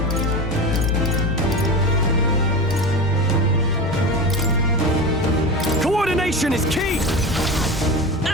Coordination is key!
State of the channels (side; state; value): both; normal; correlation 0.26